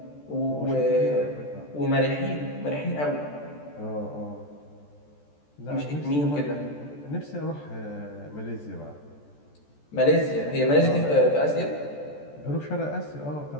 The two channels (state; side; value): late; right; 14 ms